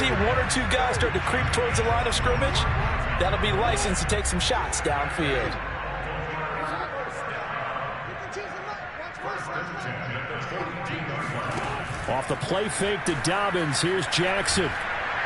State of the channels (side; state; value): both; identical; correlation 1.00